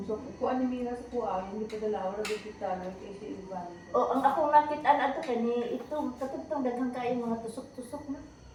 So, kuan ni Mira sa kuha, hindi pa dala, wala dito talo, kay si iban. Oh, ang akong nakitaan ato kani ito katugtong daghang kayo mga tusok-tusok na.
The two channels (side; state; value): both; identical; correlation 1.00